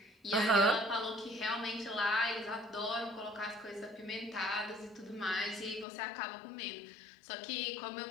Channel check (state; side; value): drops out; right; at 5.9 s